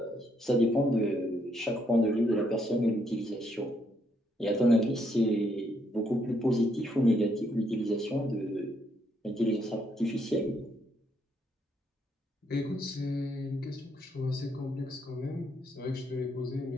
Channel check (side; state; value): both; normal; correlation 0.73